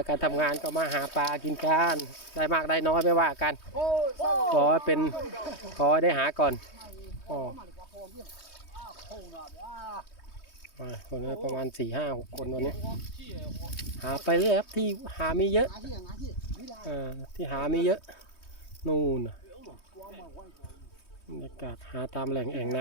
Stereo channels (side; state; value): right; late; 3.2 ms